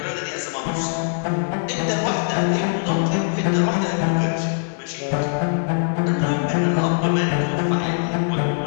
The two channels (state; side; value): silent; right; 64 dB below the other